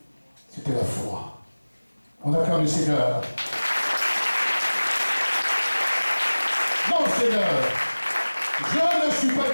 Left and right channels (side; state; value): both; inverted; correlation -1.00